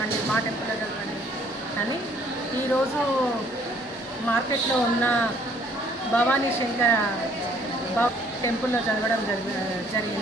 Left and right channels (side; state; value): both; normal; correlation 0.61